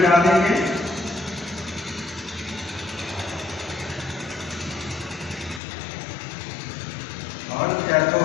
डाल देंगे और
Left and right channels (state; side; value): drops out; right; at 5.6 s